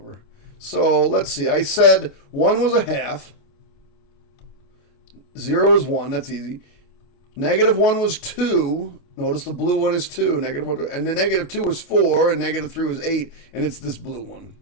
So let's see. I said 1 was a half. 0 is 1. That's easy. Negative 1 was 2. Notice the blue one is 2. Negative 1. And the negative 2 was 4. And negative 3 was 8. And it's this blue one.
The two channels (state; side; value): late; right; 28 ms